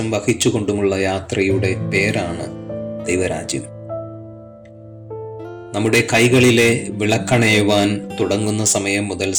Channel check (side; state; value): both; identical; correlation 1.00